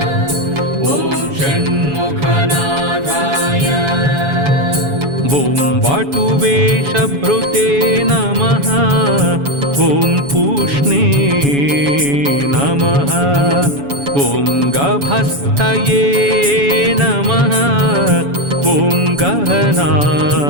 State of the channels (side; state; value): left; late; 7.1 ms